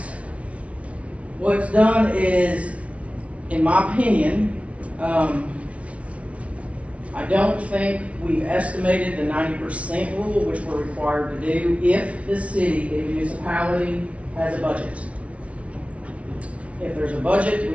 what's done is, in my opinion, I don't think we've estimated the 90% rule, which we're required to do if the city, the municipality, has a budget. If there's a budget,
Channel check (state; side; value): late; left; 0.064 ms